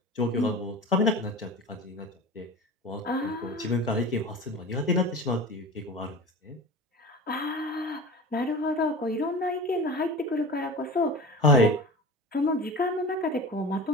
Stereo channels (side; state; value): both; normal; correlation 0.33